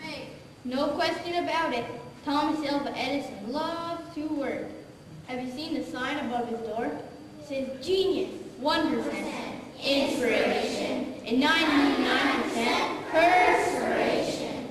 made. No question about it. Thomas Alva Edison loves to work. Have you seen the sign above his door? It says genius, 1%, inspiration, and 99% perspiration.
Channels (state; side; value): identical; both; correlation 1.00